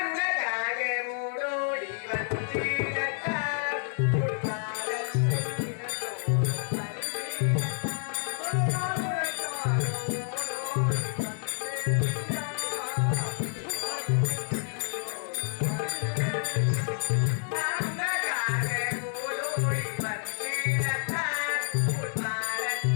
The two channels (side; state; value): right; silent; 58 dB below the other